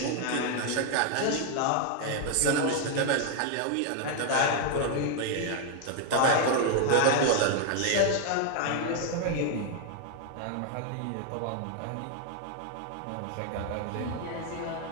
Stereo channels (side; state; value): both; different; correlation 0.00